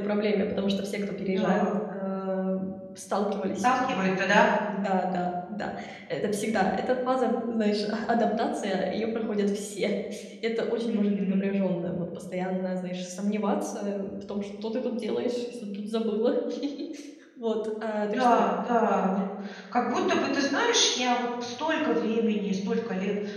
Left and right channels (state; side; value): identical; both; correlation 1.00